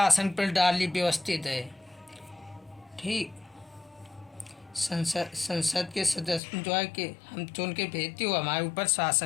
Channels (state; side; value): drops out; right; at 6.4 s